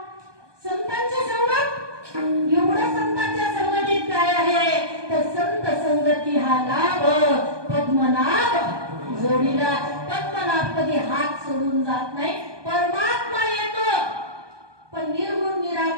संतांची संगत. एवढं संतांच्या संगतीत काय आहे, तर संत संगती हा लाभ पद्मनाभ जोडीला. पद्मनाभ कधी हात सोडून जात नाही. परमात्मा येतो पण निर्गुण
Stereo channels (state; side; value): late; left; 1.2 ms